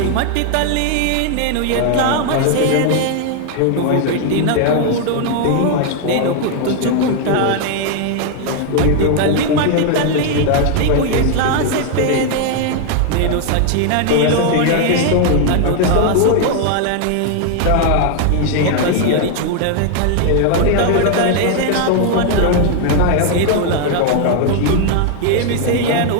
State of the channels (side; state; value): both; different; correlation 0.00